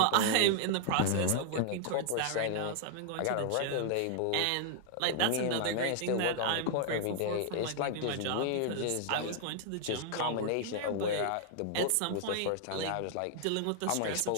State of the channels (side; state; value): both; different; correlation -0.01